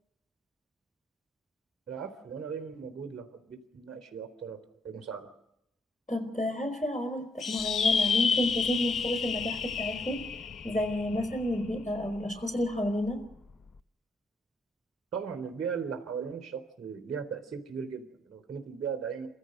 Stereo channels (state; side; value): normal; both; correlation 0.73